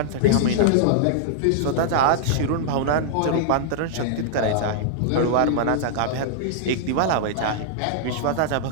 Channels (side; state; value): both; different; correlation -0.01